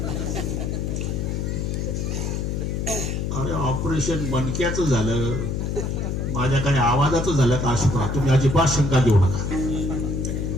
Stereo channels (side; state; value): left; noise; hum, 1 dB below the sound